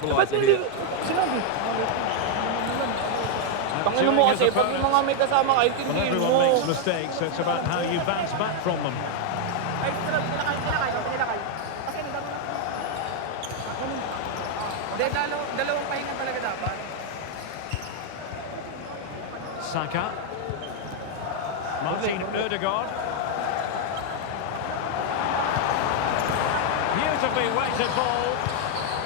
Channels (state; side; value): different; both; correlation 0.00